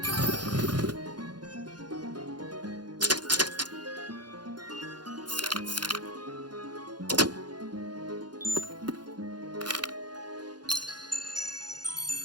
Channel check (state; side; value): late; left; 0.70 ms